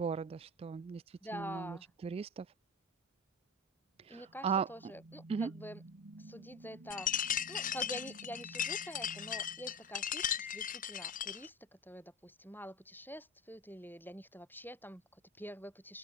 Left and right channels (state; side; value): normal; both; correlation 0.26